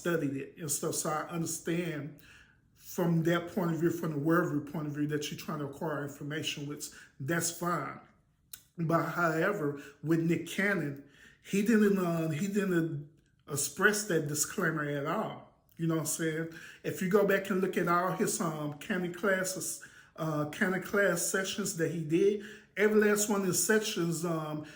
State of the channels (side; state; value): both; identical; correlation 1.00